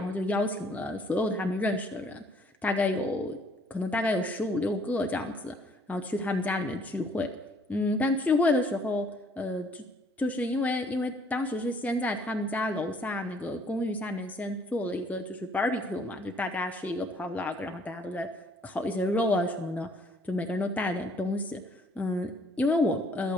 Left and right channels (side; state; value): both; normal; correlation 0.62